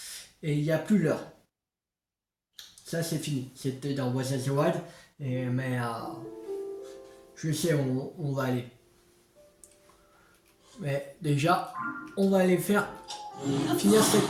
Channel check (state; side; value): identical; both; correlation 1.00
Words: et il n'y a plus l'heure. Ça c'est fini, c'était dans Breath of the Wild, mais je sais où on va aller. Mais déjà, on va aller finir